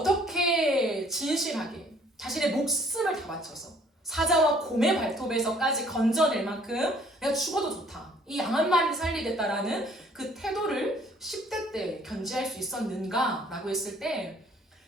진실하게 자신의 목숨을 다 바쳐서 사자와 곰의 발톱에서까지 건져낼 만큼 내가 죽어도 좋다. 이 양 한 마리를 살리겠다라는 그 태도를 10대 때 견지할 수 있었는가? 라고 했을 때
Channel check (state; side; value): normal; both; correlation 0.59